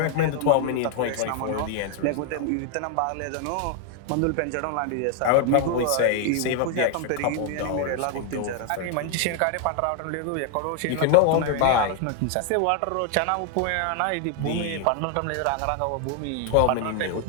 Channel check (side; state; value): both; different; correlation 0.00